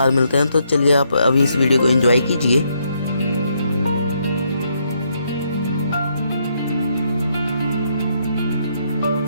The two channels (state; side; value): inverted; both; correlation -0.75